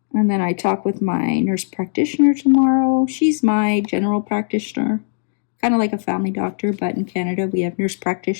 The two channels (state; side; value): silent; right; 56 dB below the other